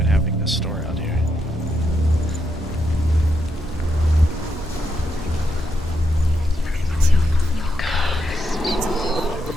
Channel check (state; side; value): normal; both; correlation 0.81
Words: having this store out here?